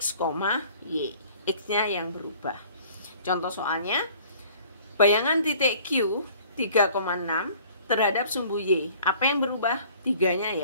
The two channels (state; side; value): inverted; both; correlation -0.52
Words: Y. X-nya yang berubah. Contoh soalnya, bayangan titik Q 3,6 terhadap sumbu Y. Apa yang berubah? 3-nya